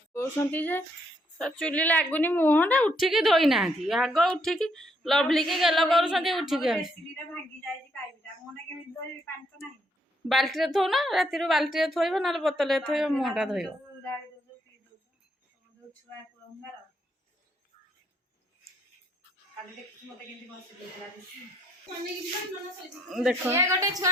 चुली लगुनि मुहटा उठिकी धोई ना आग उठिकी लवली की गेल कर उठिकी बाल्टी थो ना राति बाल्टी थोब ना बोतल थोब मुहटा धोब देख गोटे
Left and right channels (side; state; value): both; normal; correlation 0.71